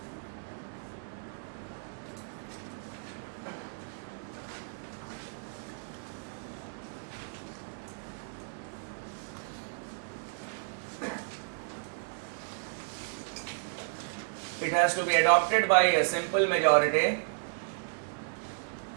It has to be adopted by a simple majority.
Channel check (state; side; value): silent; left; digital silence